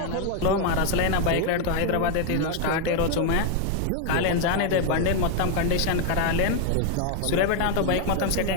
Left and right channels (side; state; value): both; different; correlation 0.01